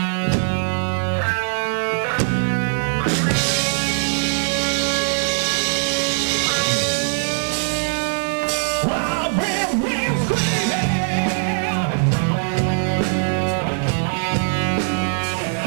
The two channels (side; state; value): left; silent; 65 dB below the other